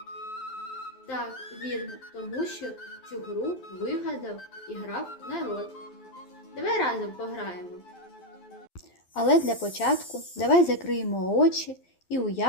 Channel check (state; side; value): late; right; 12 ms